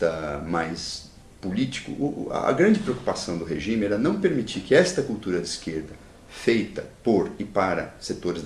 mais político, a grande preocupação do regime era não permitir que esta cultura de esquerda, feita por e para setores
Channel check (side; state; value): both; identical; correlation 1.00